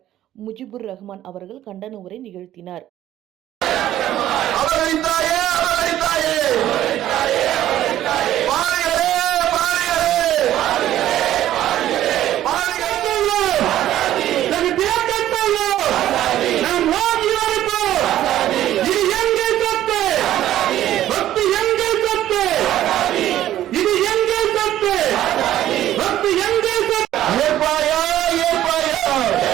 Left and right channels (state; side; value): quieter; left; 12.8 dB